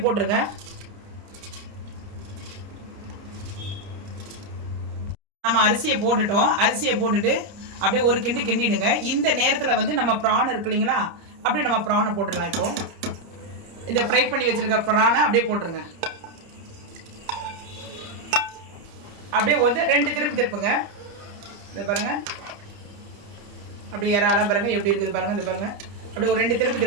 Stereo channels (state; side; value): late; left; 30 ms